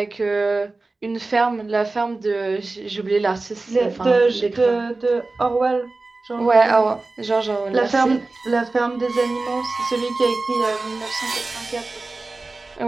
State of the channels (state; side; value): quieter; left; 3.4 dB